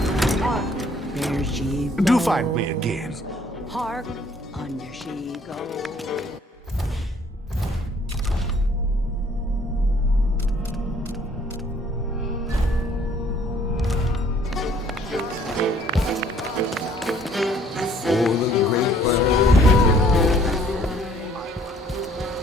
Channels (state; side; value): normal; both; correlation 0.59